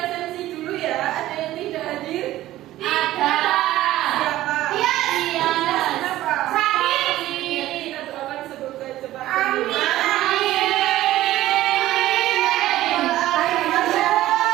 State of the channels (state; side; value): quieter; left; 15.0 dB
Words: dulu ya. Ada yang tidak hadir? Ada. Siapa? Iya. Kenapa? Sakit. Kita doakan semoga cepat Amin.